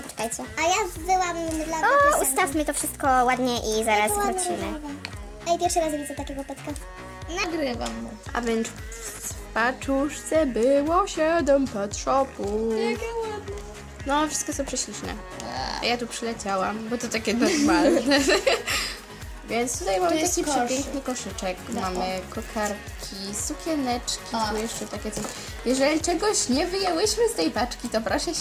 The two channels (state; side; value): identical; both; correlation 1.00